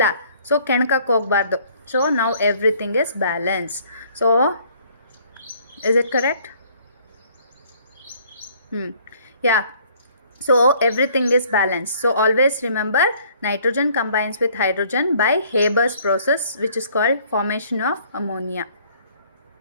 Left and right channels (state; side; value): inverted; both; correlation -0.59